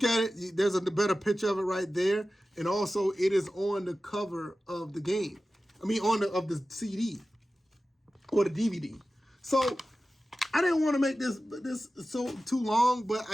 at it, there's a better picture of it right there, and also it is on the cover of the game. I mean, of the CD or the DVD. So I didn't want to make this so too long, but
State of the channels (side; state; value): both; normal; correlation 0.95